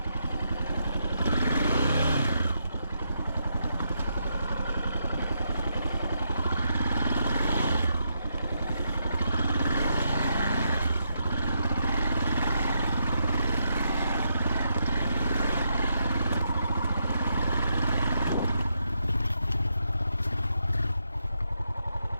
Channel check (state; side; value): inverted; both; correlation -0.79